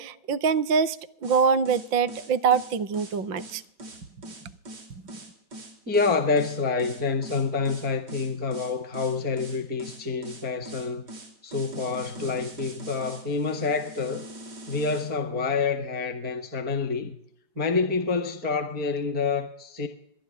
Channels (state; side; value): late; left; 5.7 ms